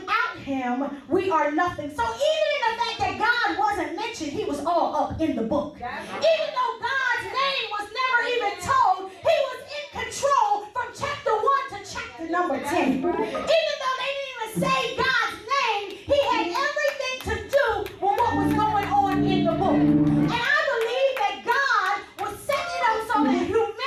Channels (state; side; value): identical; both; correlation 1.00